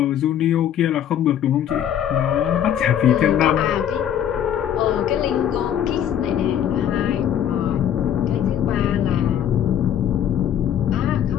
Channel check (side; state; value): right; quieter; 9.9 dB